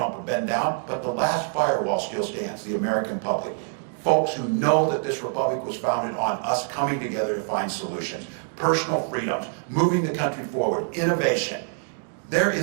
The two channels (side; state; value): left; silent; 59 dB below the other